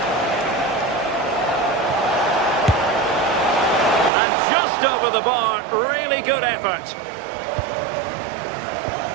And just over the bar. Really good effort.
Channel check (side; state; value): left; drops out; at 4.1 s